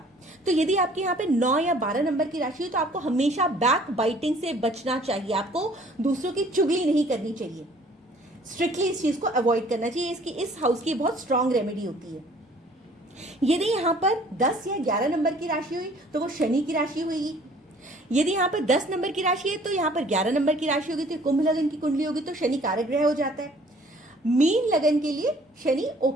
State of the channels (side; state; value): both; normal; correlation 0.55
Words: तो यदि आपके यहाँ पे 9 या 12 नंबर की राशि हो तो आपको हमेशा बैक बाइटिंग से बचना चाहिए, आपको दूसरों की चुगली नहीं करनी चाहिए, स्ट्रिक्टली इस चीज को अवॉइड करना चाहिए। इसकी इस हाउस की बहुत स्ट्रांग रेमेडी होती है। यदि यहाँ पर 10 या 11 नंबर की राशि हुई तो वो शनि की राशि हुई। यदि यहाँ पर 10 नंबर की राशि है तो यहाँ पर 11 नंबर की राशि होगी तो कुंभ लगन की कुंडली होगी, तो शनि कारक ग्रह हो जाता है। मीन लगन के लिए शनि